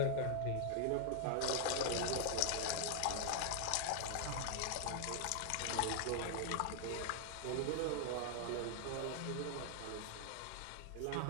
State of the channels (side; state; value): both; different; correlation 0.00